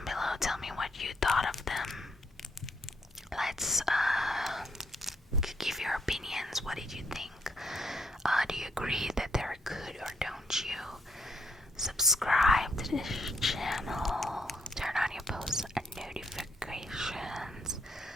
below, tell me what you thought of them. Let's give your opinions. What did you think? Do you agree that they're good, or don't you? Subscribe to this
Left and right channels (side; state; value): both; normal; correlation 0.73